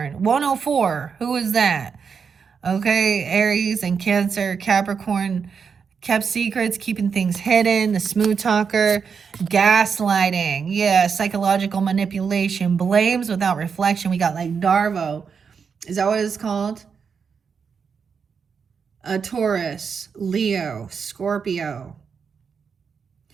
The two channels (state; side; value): quieter; left; 6.2 dB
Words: 104. Who is that? Okay, Aries and Cancer. Capricorn kept secrets, keeping things hidden. The smooth talker. Gaslighting. Yeah, psychological manipulation. Blames without reflection. We got like Darvo. Is that what it's called? A Taurus, Leo, Scorpio.